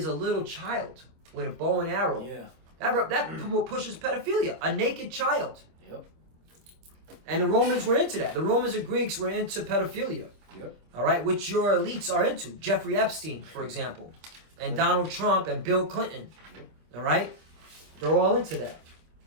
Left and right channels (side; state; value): left; late; 25 ms